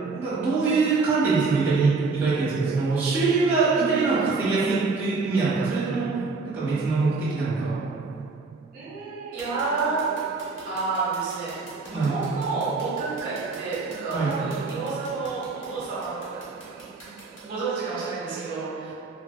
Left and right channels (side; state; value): left; quieter; 4.0 dB